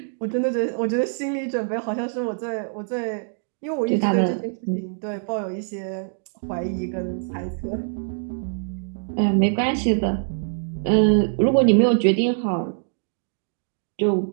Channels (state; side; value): silent; left; digital silence